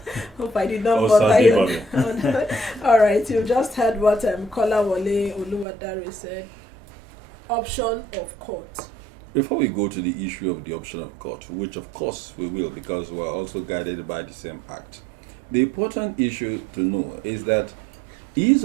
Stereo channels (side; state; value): left; drops out; at 5.7 s